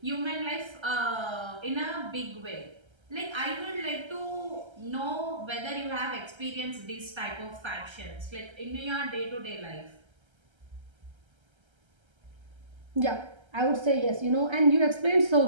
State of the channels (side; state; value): left; late; 1.3 ms